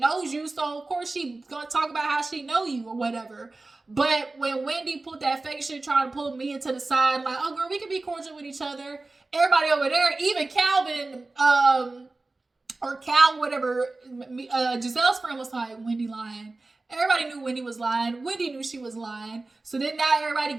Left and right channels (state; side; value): quieter; left; 3.3 dB